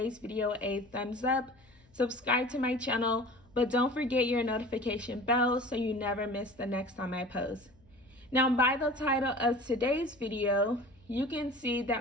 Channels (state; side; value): noise; left; hum, 30 dB below the sound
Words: video a thumbs up, subscribe to my channel, but don't forget your notification bell so you never miss the next time I post. Now, by the title of today's video, you can see